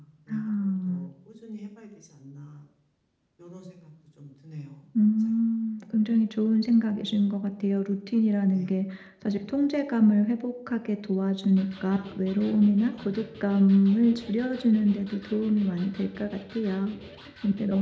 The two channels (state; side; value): identical; both; correlation 1.00